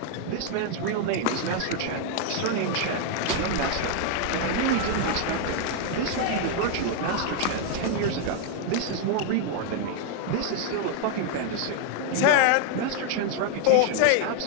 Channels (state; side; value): different; both; correlation 0.00